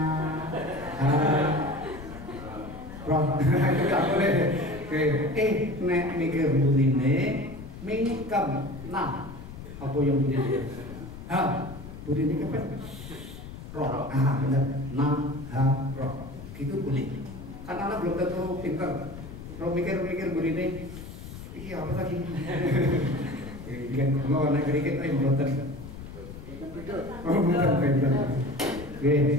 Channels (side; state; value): left; noise; rumble, 12 dB below the sound